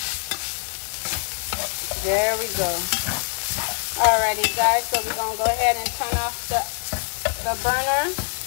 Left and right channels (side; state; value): right; silent; 63 dB below the other